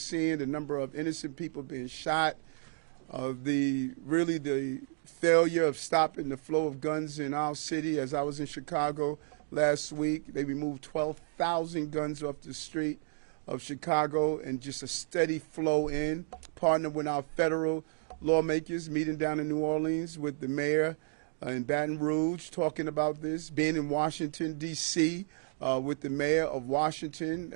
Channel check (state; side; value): silent; left; digital silence